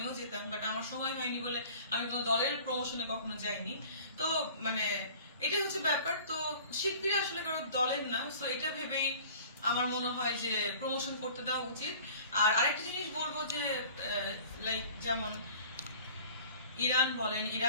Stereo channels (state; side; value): inverted; both; correlation -0.46